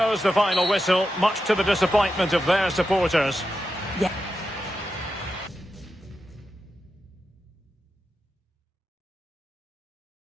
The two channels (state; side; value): normal; both; correlation 0.89